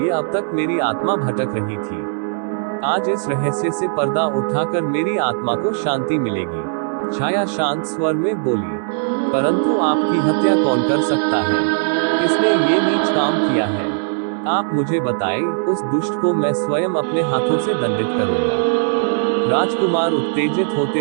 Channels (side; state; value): left; silent; digital silence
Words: अब तक मेरी आत्मा भटक रही थी। आज इस रहस्य से पर्दा उठाकर मेरी आत्मा को शांति मिलेगी। छाया शांत स्वर में बोली, परंतु आपकी हत्या कौन कर सकता है? किसने ये नीच काम किया है? आप मुझे बताएं, उस दुष्ट को मैं स्वयं अपने हाथों से दंडित करूंगा। राजकुमार उत्तेजित होते